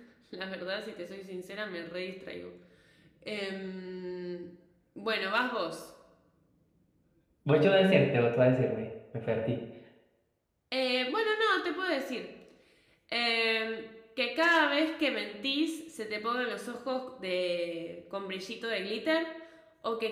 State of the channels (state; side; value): identical; both; correlation 1.00